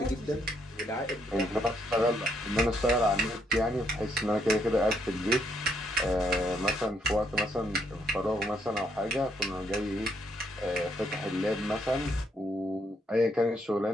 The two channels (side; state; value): both; normal; correlation 0.73